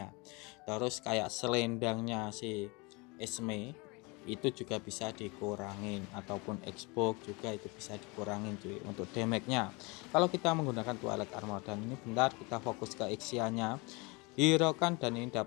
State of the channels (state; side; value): quieter; right; 27.5 dB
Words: Terus kayak selendangnya si Esme itu juga bisa dikurangin, ataupun Xbox juga itu bisa dikurangin cuy untuk damage-nya kalau kita menggunakan Twilight Armor. Dan ini bentar kita fokus ke Ixia-nya, hero kan, dan ini